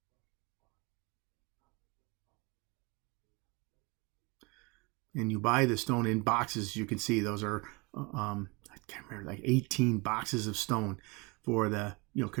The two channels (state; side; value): quieter; left; 27.8 dB